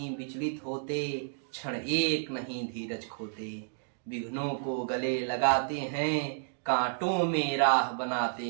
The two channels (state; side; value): silent; left; digital silence